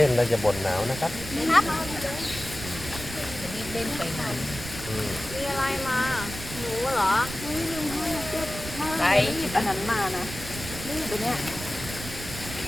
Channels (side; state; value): right; noise; rumble, 11 dB below the sound